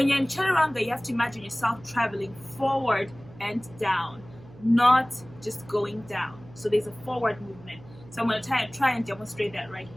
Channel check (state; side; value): noise; right; hum, 21 dB below the sound